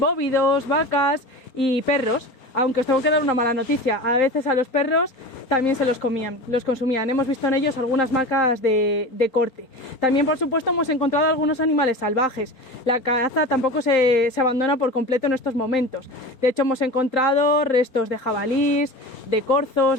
vacas y perros. Aunque os tengo que dar una mala noticia, a veces a los perros también se los consumían. Hemos visto en ellos algunas marcas de corte. También, por supuesto, hemos encontrado algunos animales salvajes. La caza tampoco se abandona por completo en estos momentos. De hecho, hemos encontrado restos de jabalís, de corzos,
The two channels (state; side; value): late; right; 4.4 ms